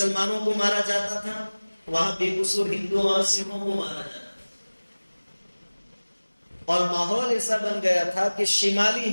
کو مارا جاتا تھا, وہاں بے قصور ہندوؤں اور سکھوں کو مارا جاتا تھا. اور ماحول ایسا بن گیا تھا کہ شمالی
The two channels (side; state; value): both; inverted; correlation -1.00